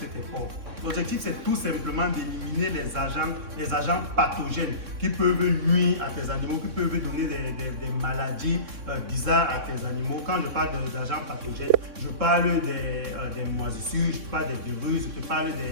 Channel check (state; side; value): late; left; 3.6 ms